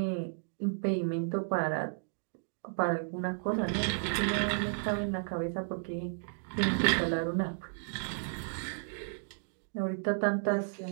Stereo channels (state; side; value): silent; left; digital silence